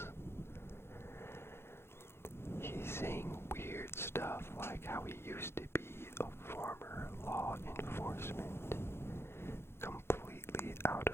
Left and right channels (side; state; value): right; late; 0.12 ms